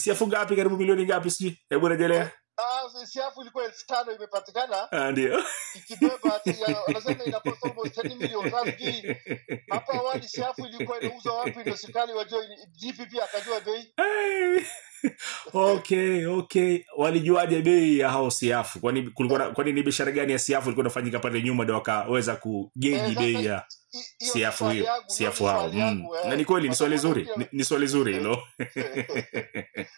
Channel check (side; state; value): left; silent; digital silence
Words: ngapi, karibu milioni ngapi siji? Hebu rejelea. Siafu ilikuwa 5,000 imepatikana. Ndio. Ikibeba ati wanasema ina cost almost 10 million. Sasa hapa awali siafu ilikuwa inauzwa wapi ndio serikali wajua GPP akajua bei. Okay. Walijuaje bei ya hao siafu? Kwani ni biashara gani ya siafu ilikuwa inafanyika pale nyuma ndio wakaweza kugeji bei ya siafu hiyo? Siafu hao. Na ni kweli ni swali zuri. Ni swali zuri hilo.